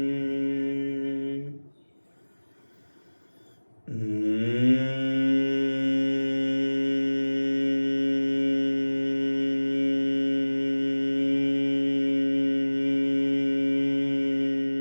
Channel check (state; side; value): inverted; both; correlation -1.00